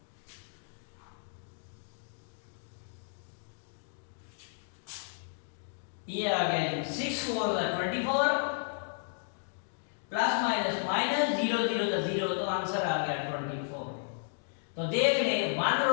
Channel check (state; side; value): silent; right; digital silence